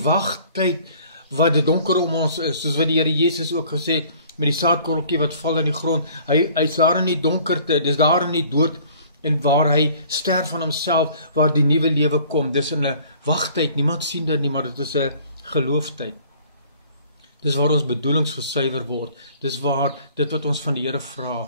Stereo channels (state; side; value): inverted; both; correlation -0.53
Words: wat dit donker om ons is, soos wat die Here Jesus ook gesê het, met die saadkorreltjie wat val in die grond, hy is daar in die donkerte, dis daar in die dood, en waar hy sterf van homself, waar die nuwe lewe kom, dis in 'n wagtyd, niemand sien dit nie, maar dit is 'n gelooftyd. Dis waar ons bedoelings gesuiwer word, dis waar dit wat ons van die Here